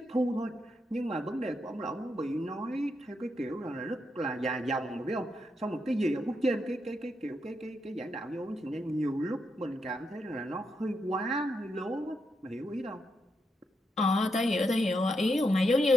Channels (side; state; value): both; normal; correlation 0.82